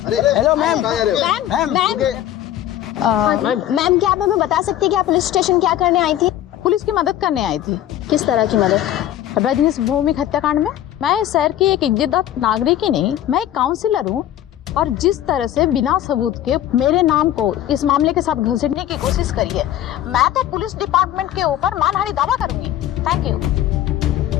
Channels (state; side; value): quieter; right; 12.1 dB